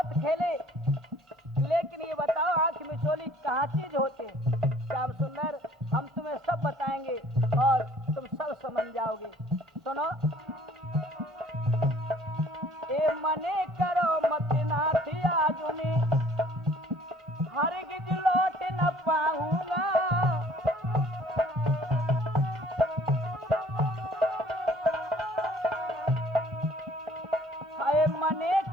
खेले, लेकिन ये बताओ आंख मिचोली कहाँ चीज होते। श्याम सुंदर, हम तुम्हें सब बताएंगे और तुम सब समझ जाओगे। सुनो, ए मने करो मत नाथ आजुनी, हरगिज लौट न पाऊंगा।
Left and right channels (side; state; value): both; normal; correlation 0.55